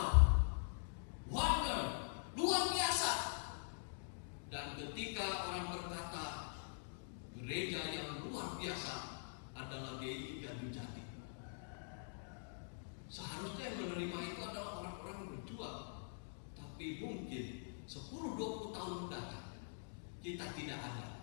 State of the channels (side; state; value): right; silent; digital silence